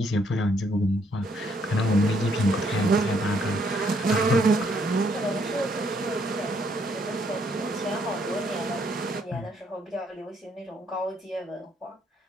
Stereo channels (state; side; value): normal; both; correlation 0.70